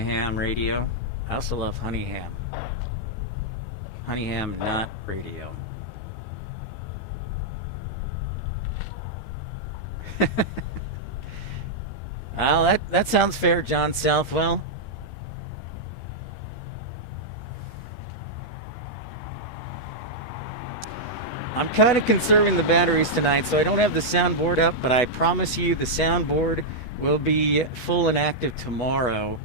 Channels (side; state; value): right; late; 13 ms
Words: radio. I also love honey ham. Honeyham, not radio. Well, that sounds fair, John Southwell. I'm kind of conserving the batteries tonight, so I don't have the soundboard up, but I promise you the soundboard will be full and active tomorrow.